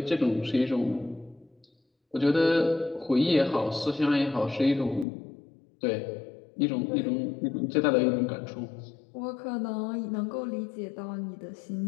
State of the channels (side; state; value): right; drops out; at 5.1 s